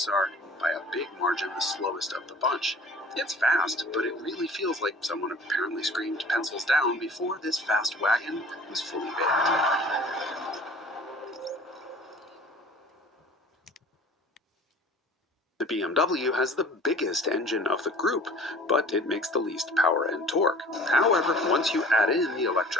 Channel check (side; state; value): both; normal; correlation 0.46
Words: are, by a big margin, the slowest of the bunch. It's fast, but it really feels like someone apparently screamed pencils down before this fast wagon was fully baked. The BMW has the biggest engine of the group, but it makes the least power and torque. However, once you add in the